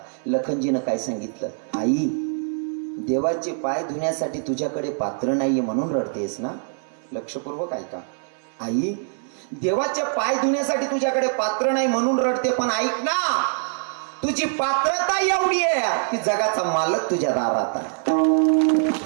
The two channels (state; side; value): silent; left; 59 dB below the other